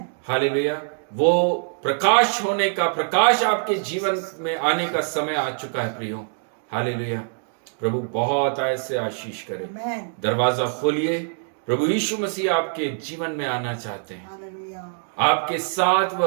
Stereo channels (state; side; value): silent; left; 60 dB below the other